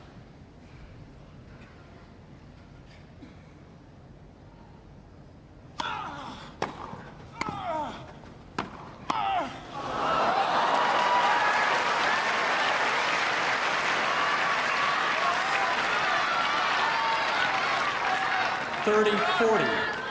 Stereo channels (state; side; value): identical; both; correlation 1.00